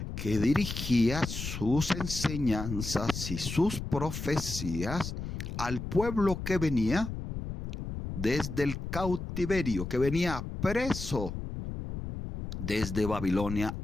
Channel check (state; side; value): noise; left; rumble, 6 dB below the sound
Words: que dirigía sus enseñanzas y sus profecías al pueblo que venía desde el cautiverio, que venía preso desde Babilonia